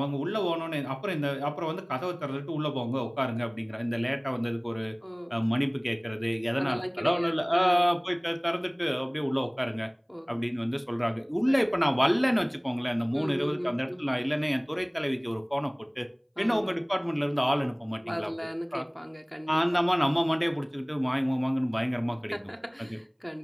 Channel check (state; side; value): identical; both; correlation 1.00